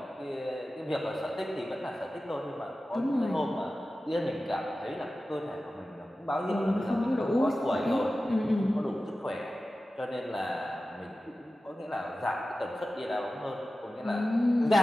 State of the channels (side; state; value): both; normal; correlation 0.95